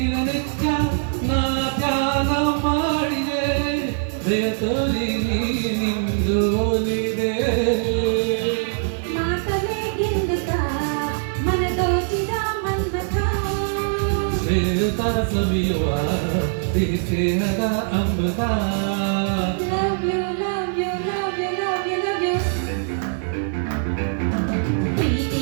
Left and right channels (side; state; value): left; silent; digital silence